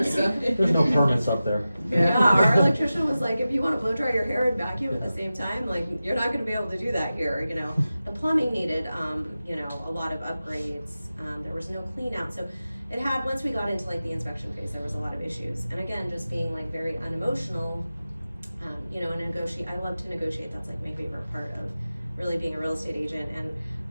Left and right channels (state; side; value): inverted; both; correlation -0.94